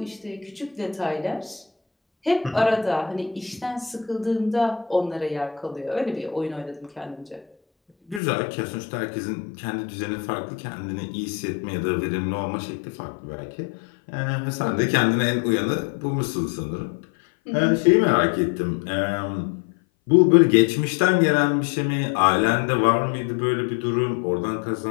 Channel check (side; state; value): right; drops out; at 8.2 s